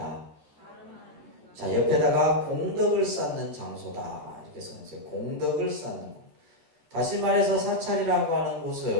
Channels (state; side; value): late; left; 13 ms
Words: 자, 옆에다가 공덕을 쌓는 장소다. 이렇게 써있어요. 공덕을 쌓는 곳. 다시 말해서 사찰이라고 하는